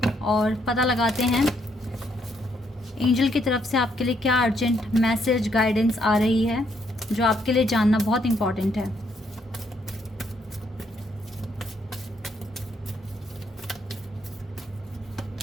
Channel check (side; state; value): both; normal; correlation 0.73